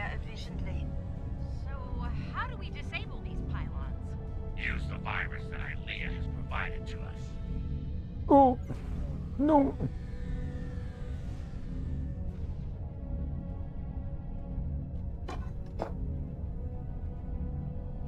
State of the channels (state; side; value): identical; both; correlation 1.00